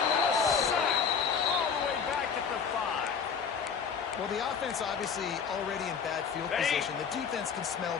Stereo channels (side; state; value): right; quieter; 6.4 dB